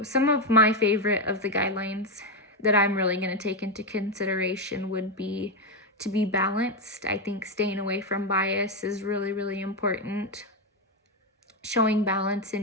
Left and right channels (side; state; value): both; normal; correlation 0.07